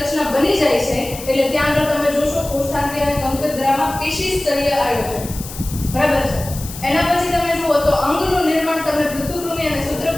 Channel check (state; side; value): noise; left; hiss, 12 dB below the sound